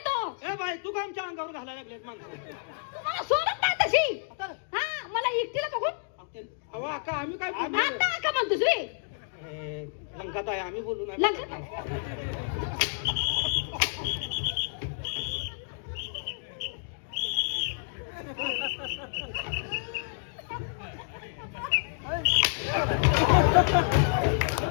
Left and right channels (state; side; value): silent; right; digital silence